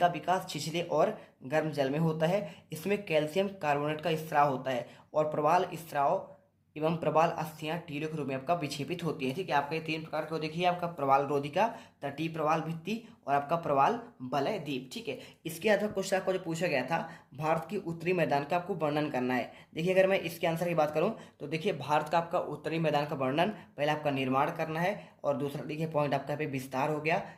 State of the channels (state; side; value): identical; both; correlation 1.00